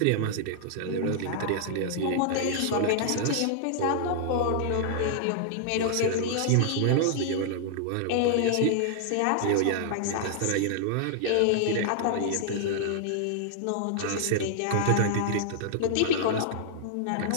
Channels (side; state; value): both; different; correlation -0.01